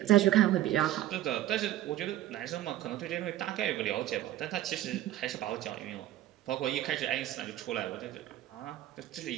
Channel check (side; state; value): left; quieter; 13.9 dB